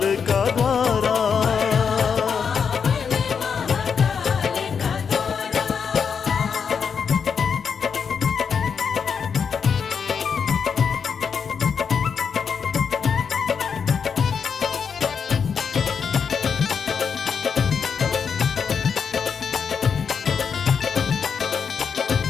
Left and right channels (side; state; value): right; quieter; 6.5 dB